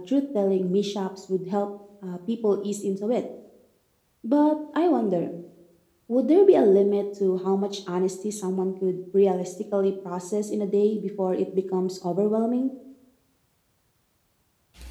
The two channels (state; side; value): identical; both; correlation 1.00